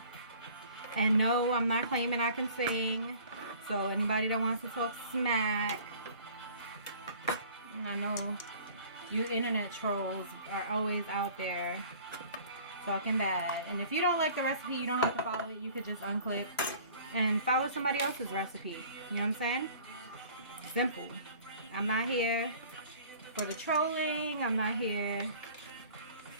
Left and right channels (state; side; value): inverted; both; correlation -0.49